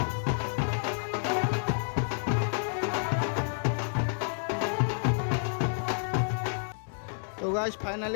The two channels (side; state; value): right; silent; digital silence